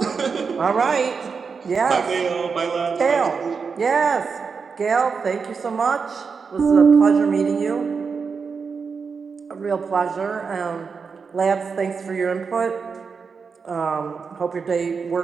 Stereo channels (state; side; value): quieter; left; 5.4 dB